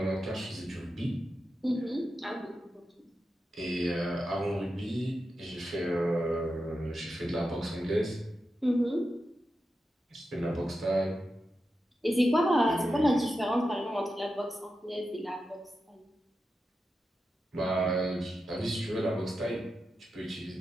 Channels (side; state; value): both; normal; correlation 0.90